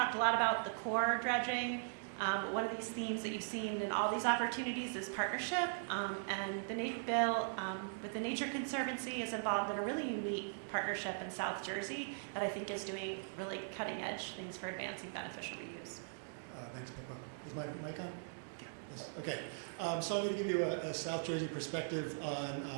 a lot about the core dredging. One of these themes that you've seen in all these opportunities is partnership, and Bill with the Nature Conservancy is involved in a really unique partnership in South Jersey that I think is doing really cutting edge things for advancing beneficial reuse. Thanks, Pippa. Is my mic on? Yes. Okay. So I'm going to give you a South Jersey perspective on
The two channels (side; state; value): left; silent; digital silence